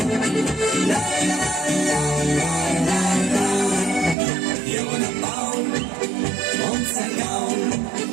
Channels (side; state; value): left; drops out; at 4.2 s